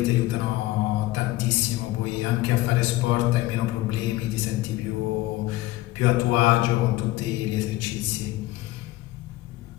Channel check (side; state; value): right; quieter; 17.5 dB